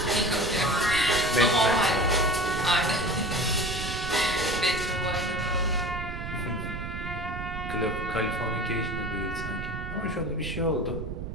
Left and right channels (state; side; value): noise; right; rumble, 7 dB below the sound